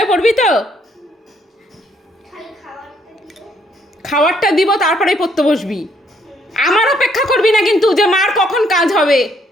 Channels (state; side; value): normal; both; correlation 0.69